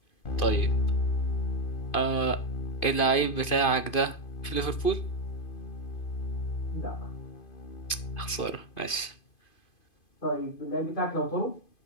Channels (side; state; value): right; late; 2.5 ms